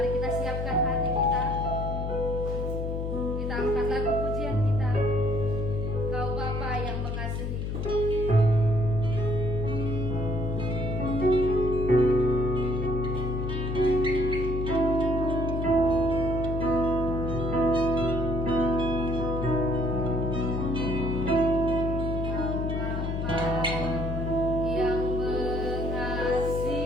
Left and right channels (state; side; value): noise; left; hum, 2 dB below the sound